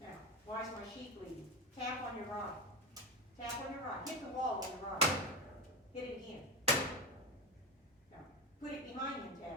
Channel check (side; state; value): both; normal; correlation 0.18